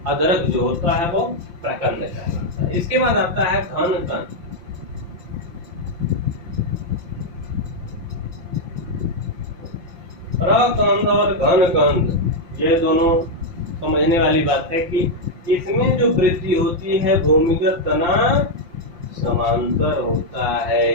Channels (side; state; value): left; late; 5.8 ms